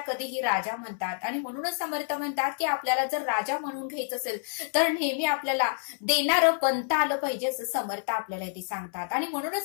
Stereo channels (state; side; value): silent; right; 59 dB below the other